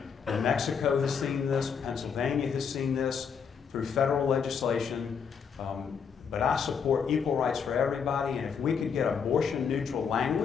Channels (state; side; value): quieter; right; 6.6 dB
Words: New Mexico has seen this, Pennsylvania has seen this through federal legislation. But I support equal rights for everybody, and if we could get abortion-neutral